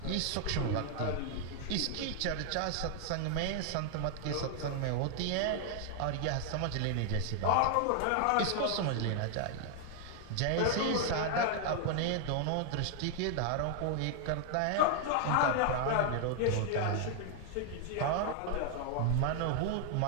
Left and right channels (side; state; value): both; different; correlation 0.00